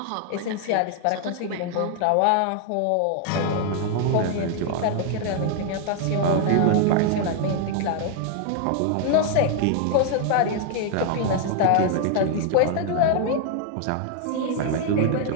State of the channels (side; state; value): both; different; correlation 0.00